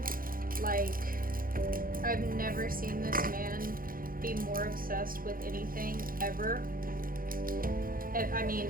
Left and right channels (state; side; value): late; left; 0.41 ms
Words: Like, I've never seen this man be more obsessed with anything ever. I